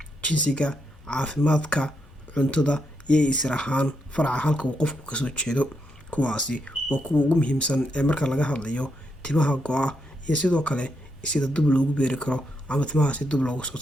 jinsiga, caafimaadka, cuntada iyo isir ahaan faraca halka uu qofku kasoo jeedo. Kuwaasi waa kuwa ugu muhiimsan ee marka laga hadlayo timaha go-a iyo sidoo kale sida dib loogu beeri karo ama timaha si dib loogu soo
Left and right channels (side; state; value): both; normal; correlation 0.81